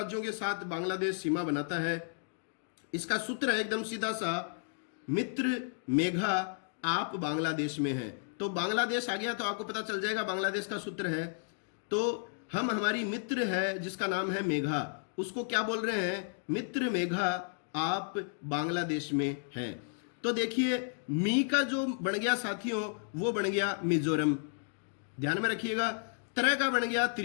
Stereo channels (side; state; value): right; silent; digital silence